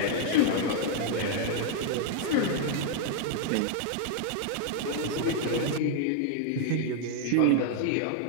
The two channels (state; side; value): different; both; correlation 0.00